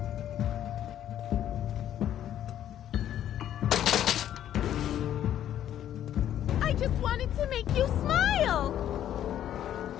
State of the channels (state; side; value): quieter; right; 11.1 dB